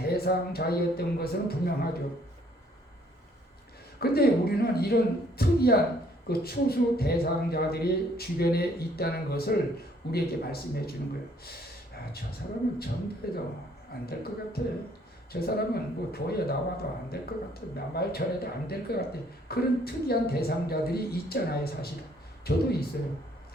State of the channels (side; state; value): both; normal; correlation 0.63